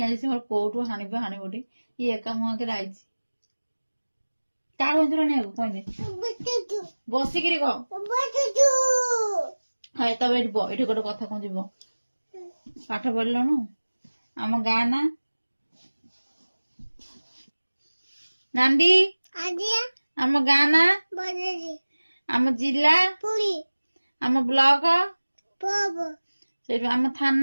आइछि मोर कोठु हानि बोटी ये एका मुह के आइछि का होंजरो नै कोइ नै बसी किरी को हाय तब एठी गोटे कथा कोन जीवो पाठ पढलनु आम गाँ ना नांदी आम गाँ ना आम जिला आम ब्लॉक आम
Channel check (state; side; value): inverted; both; correlation -1.00